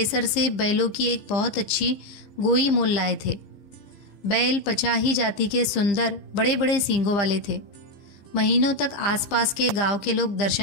से बैलों की एक बहुत अच्छी गोई मोल लाए थे। बैल पचाही जाति के सुंदर बड़े बड़े सींगों वाले थे। महीनों तक आसपास के गांव के लोग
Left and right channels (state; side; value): late; right; 15 ms